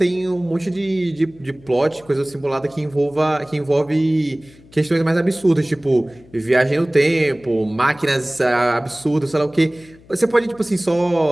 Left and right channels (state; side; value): noise; left; hum, 26 dB below the sound